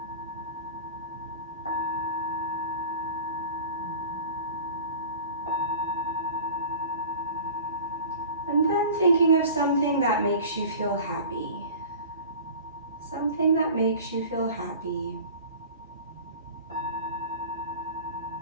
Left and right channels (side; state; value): both; inverted; correlation -0.40